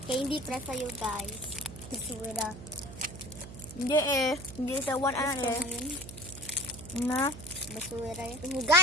Kaya hindi para sa'yo guys. Basura. Hindi eh. Hindi sa one ano eh. Na. Basura yun.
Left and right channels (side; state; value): right; noise; hum, 13 dB below the sound